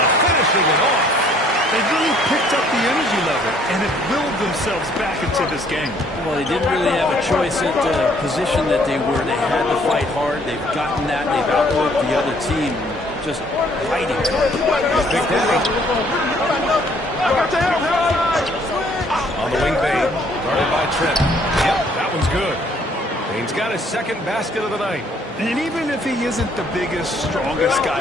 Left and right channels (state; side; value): normal; both; correlation 0.62